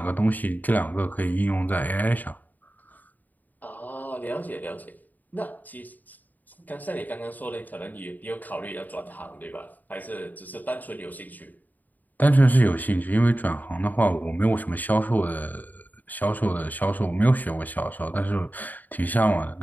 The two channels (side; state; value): right; late; 0.083 ms